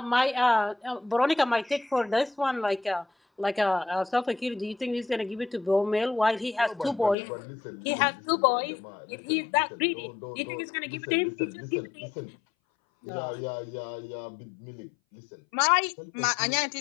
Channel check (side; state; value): right; drops out; at 7.2 s